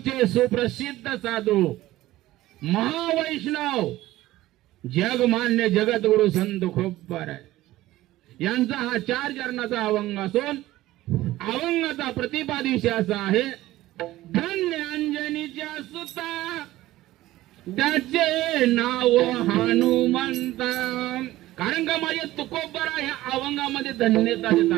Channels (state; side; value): quieter; left; 16.2 dB